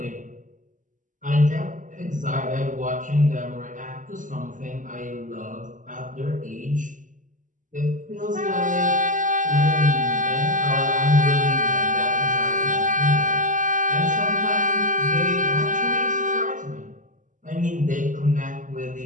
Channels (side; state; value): left; late; 0.37 ms